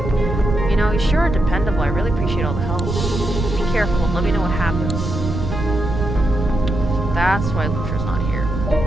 You know, you sure are dependable. I really appreciate all the help. Be careful and let me know what happens. That's why Lutra's not here.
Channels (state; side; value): noise; right; rumble, 4 dB below the sound